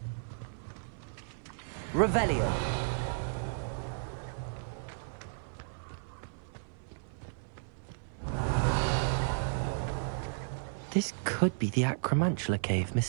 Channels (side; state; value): left; silent; 55 dB below the other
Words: Revelio. This could be the Acromantula cave